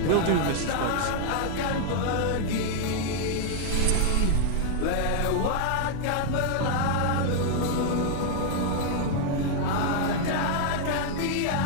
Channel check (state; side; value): different; both; correlation 0.00